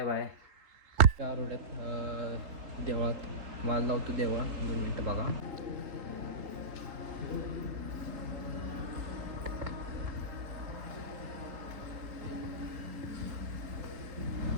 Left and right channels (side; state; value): left; late; 3.8 ms